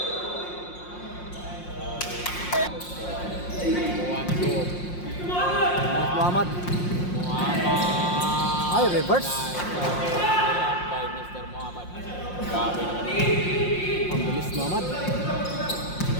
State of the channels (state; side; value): late; right; 5.6 ms